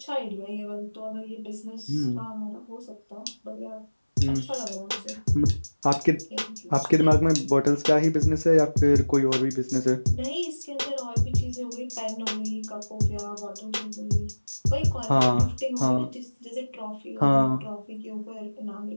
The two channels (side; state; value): both; inverted; correlation -1.00